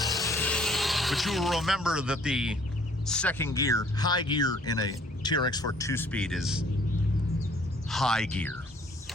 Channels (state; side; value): normal; both; correlation 0.59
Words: But you will remember that the second gear, high gear in a TRX4 2-speed is high gear.